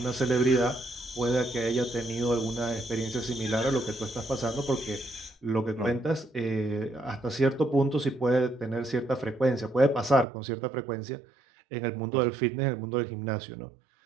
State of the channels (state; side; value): drops out; left; at 10.2 s